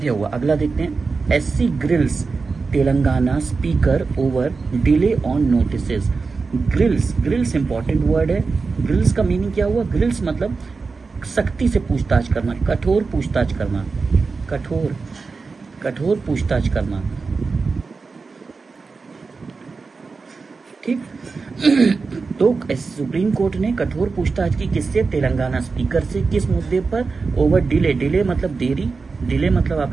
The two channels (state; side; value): quieter; left; 4.4 dB